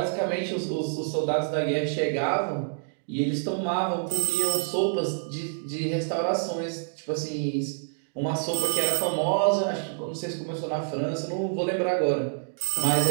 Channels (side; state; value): left; silent; digital silence